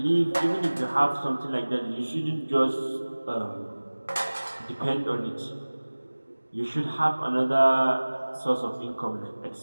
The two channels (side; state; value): both; inverted; correlation -1.00